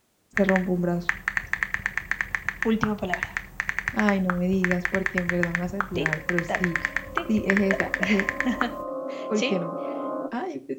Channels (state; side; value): identical; both; correlation 1.00